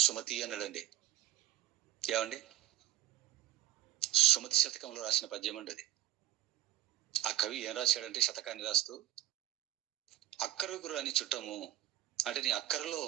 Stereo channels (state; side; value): quieter; left; 13.8 dB